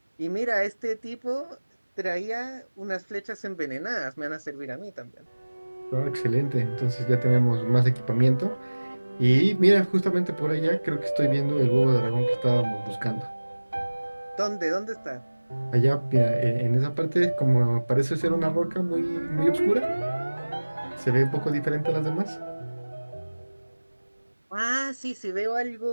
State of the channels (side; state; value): both; inverted; correlation -1.00